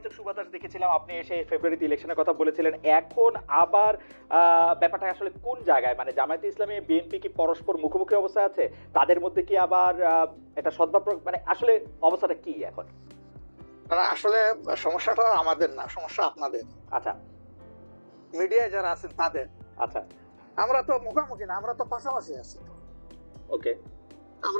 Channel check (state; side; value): inverted; both; correlation -1.00